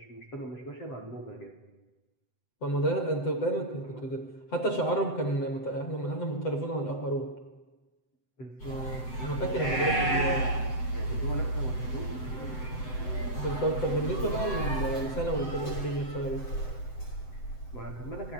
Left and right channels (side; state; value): right; late; 7.8 ms